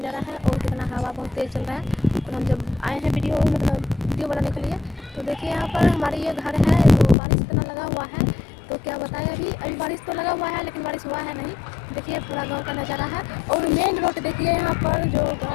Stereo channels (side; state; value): right; drops out; at 7.2 s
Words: है और कितना हवा बहुत तेज़ चल रहा है। और हम जब आए हैं वीडियो बनाने के लिए, तो देखिए यहाँ पर हमारे ये घर है, तो बारिश इतना लगा हुआ है, तो क्या बताएं। अभी बारिश तो लगा हुआ है लेकिन बारिश हुआ है नहीं। देखिए पूरा गाँव का नज़ारा है और मेन रोड देखिए, यहाँ पर जो